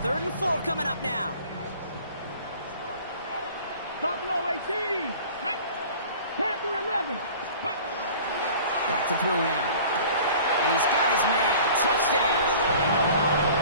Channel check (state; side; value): inverted; both; correlation -0.45